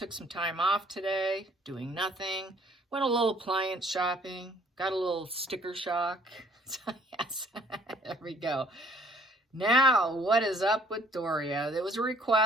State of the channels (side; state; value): both; normal; correlation 0.60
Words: some time off today, doing nothing. Went a little appliance shopping, got a little sticker shock. So yes, there we go. Now, what is up with Doria? There was a